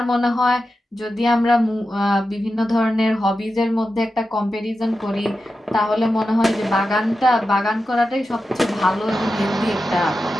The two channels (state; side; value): normal; both; correlation 0.91